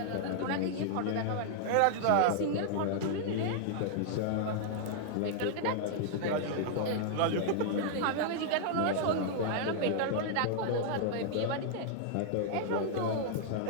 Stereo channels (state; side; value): different; both; correlation -0.01